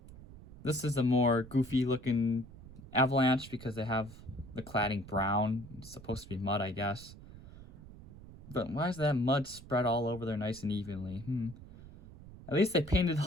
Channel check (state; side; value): noise; right; rumble, 17 dB below the sound